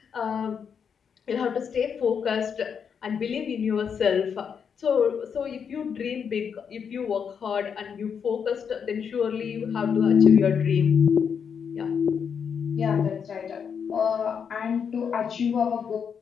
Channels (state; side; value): quieter; right; 7.0 dB